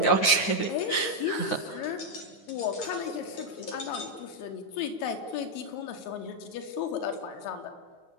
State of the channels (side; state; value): right; late; 9.6 ms